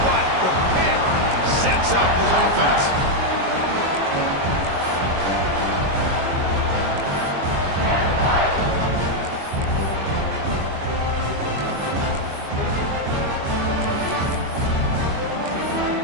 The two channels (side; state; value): left; late; 22 ms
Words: but the pick sets up his offense.